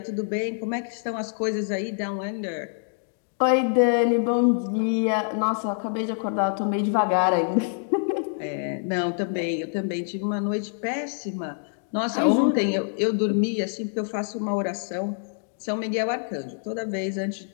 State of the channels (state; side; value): silent; right; digital silence